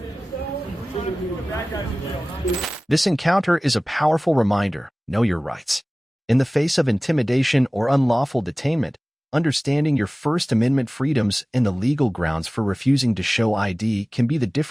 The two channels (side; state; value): both; normal; correlation 0.98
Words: This encounter is a powerful reminder: know your rights. In the face of intimidation or unlawful detainment, understanding your First Amendment freedoms and the legal grounds for refusing to show ID can be the